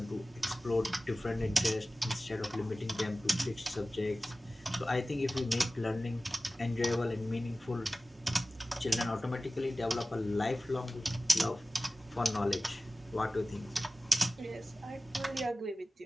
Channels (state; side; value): normal; both; correlation 0.96